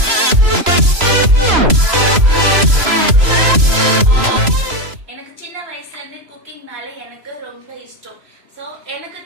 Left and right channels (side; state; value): left; late; 3.0 ms